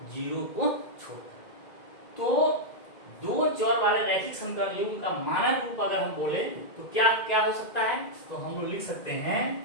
0 को छोड़कर। तो दो चर वाले रैखिक समीकरण युग्म का मानक रूप अगर हम बोले तो क्या क्या हो सकता है, तो हम लोग लिख सकते हैं,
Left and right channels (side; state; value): right; late; 2.1 ms